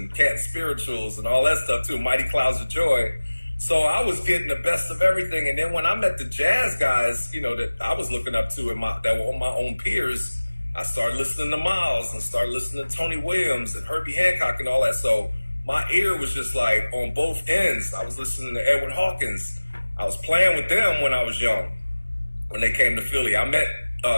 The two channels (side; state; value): both; inverted; correlation -1.00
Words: Cat Spirituals and all that stuff too, Mighty Clouds of Joy. So I was getting the best of everything. And then when I met the jazz guys, that I was looking up to that were my own peers, I started listening to Miles and started listening to Tony Williams and Herbie Hancock and all that. So my ear was just like on both ends. I was listening to Edwin Hawkins. I was playing with them when I was young, when they came to Philly. I met